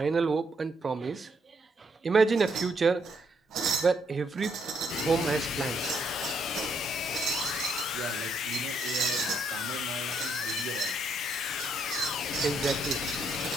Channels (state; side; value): normal; both; correlation 0.73